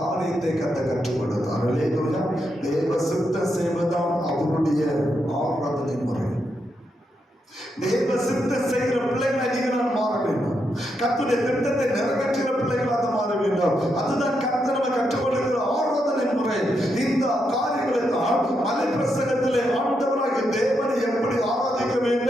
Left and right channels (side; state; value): both; normal; correlation 0.82